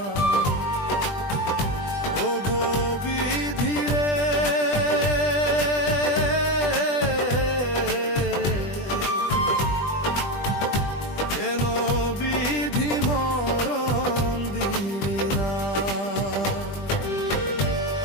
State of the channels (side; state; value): right; late; 20 ms